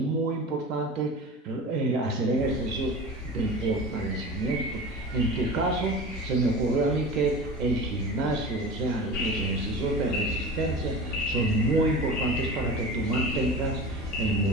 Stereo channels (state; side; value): normal; both; correlation 0.33